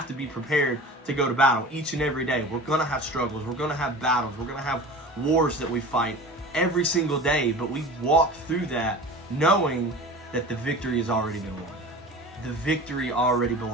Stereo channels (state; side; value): normal; both; correlation 0.37